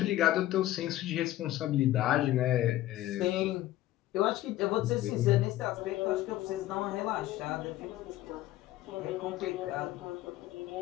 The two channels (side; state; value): right; quieter; 14.9 dB